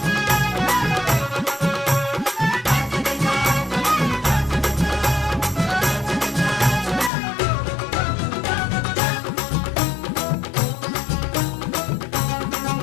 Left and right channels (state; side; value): drops out; right; at 7.1 s